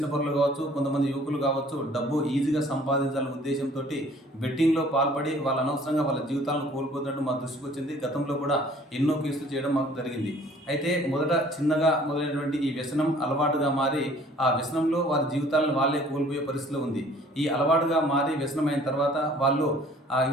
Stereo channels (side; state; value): both; normal; correlation 0.54